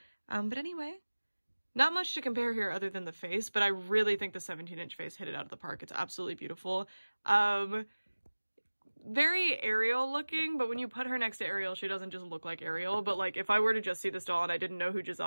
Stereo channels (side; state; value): both; inverted; correlation -1.00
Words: But anyway, not much to compare here other than the face, but I really think the 17-inch face hit it out of the park. It's absolutely beautiful. Very Ariel looking, but when you put her next to Ariel, she doesn't just look like Ariel. But like if I were to just see this doll and I didn't know who